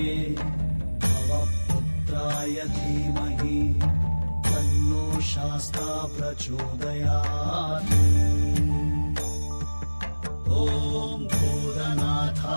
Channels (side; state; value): both; inverted; correlation -1.00